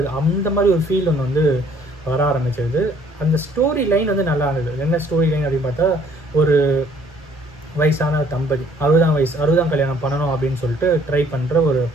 அந்த மாதிரி ஒரு ஃபீல் ஒன்று வந்து வர ஆரம்பிச்சிருது. அந்த ஸ்டோரி லைன் வந்து நல்லா இருந்தது. என்ன ஸ்டோரி லைன் அப்படின்னு பார்த்தா, ஒரு வயசான தம்பதி 60ஆம் கல்யாணம் பண்ணணும் அப்படின்னு சொல்லிட்டு ட்ரை பண்ணுற ஒரு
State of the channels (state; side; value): normal; both; correlation 0.60